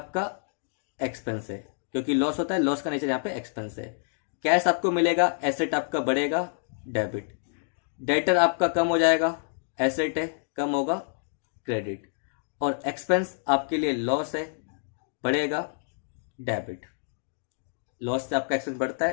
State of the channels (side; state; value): right; silent; digital silence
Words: एक्सपेंस है, क्योंकि लॉस होता है, लॉस का नेचर यहाँ पे एक्सपेंस है। कैश आपको मिलेगा, एसेट आपका बढ़ेगा डेबिट, डेटर आपका कम हो जाएगा, एसेट है कम होगा क्रेडिट, और एक्सपेंस आपके लिए लॉस है, बढ़ेगा डेबिट। लॉस से आपका एक्सपेंस बढ़ता